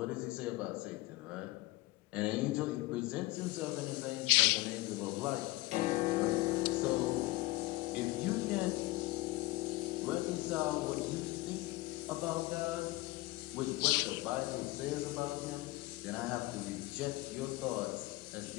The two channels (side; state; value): right; quieter; 20.3 dB